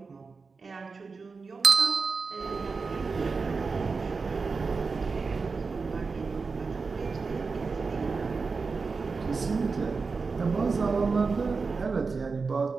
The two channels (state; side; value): quieter; left; 4.6 dB